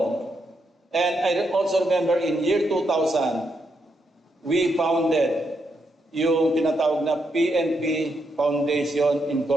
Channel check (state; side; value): normal; both; correlation 0.80